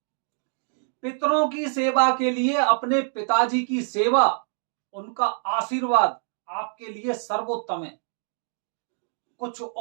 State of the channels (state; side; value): silent; left; 61 dB below the other